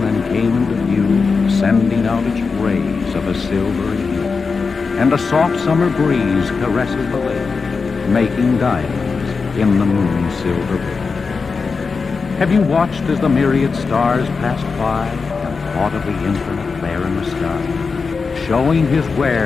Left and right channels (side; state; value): right; quieter; 4.8 dB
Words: came into view, sending out its rays of a silvery hue, and a soft summer breeze caresses the lake, making diamonds in the moon's silver veil? Have you watched as the myriad stars passed by and thought of the infinite there in the sky, showing his